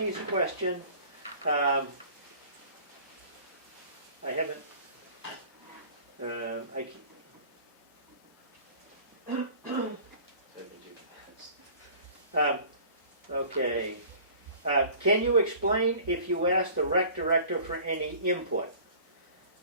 question, I haven't, I can't. Taking 2 minutes. Okay. Can you explain if you asked the rec director for any input?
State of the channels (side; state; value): both; inverted; correlation -0.46